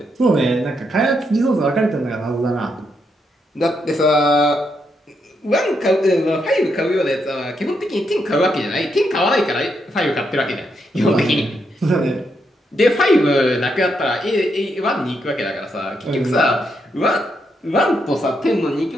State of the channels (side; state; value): both; normal; correlation 0.80